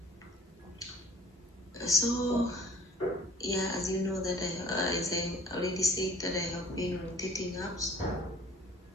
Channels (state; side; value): normal; both; correlation 0.52